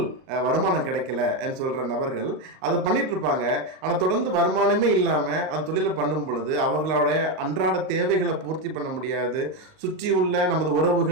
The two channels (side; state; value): left; late; 38 ms